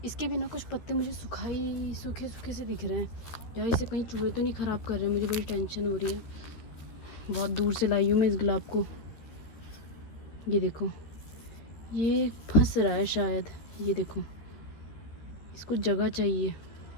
इसके भी ना कुछ पत्ते मुझे सूखे सूखे से दिख रहे हैं। यार इसे कहीं चूहे तो नहीं ख़राब कर रहे हैं, मुझे बड़ी टेंशन हो रही है। बहुत दूर से लाई हूँ मैं इस गुलाब को। ये देखो, ये फंस रहा है शायद, ये देखो, इसको जगह चाहिए।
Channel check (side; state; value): right; late; 13 ms